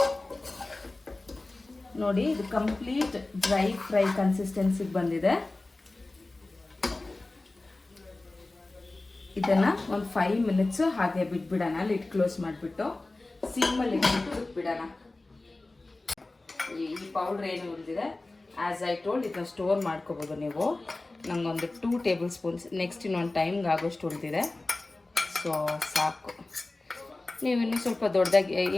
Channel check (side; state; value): right; quieter; 3.0 dB